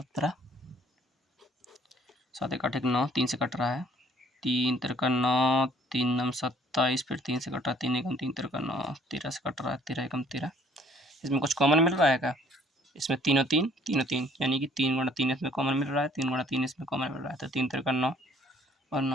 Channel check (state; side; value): normal; both; correlation 0.59